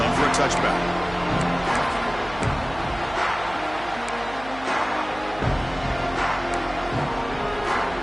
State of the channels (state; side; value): noise; right; hum, 16 dB below the sound